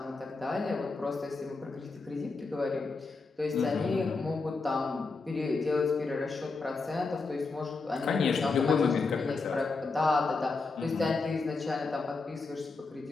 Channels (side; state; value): right; quieter; 4.0 dB